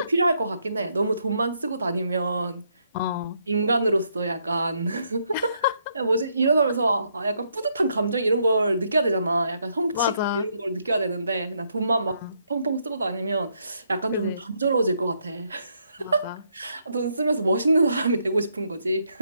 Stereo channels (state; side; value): inverted; both; correlation -0.75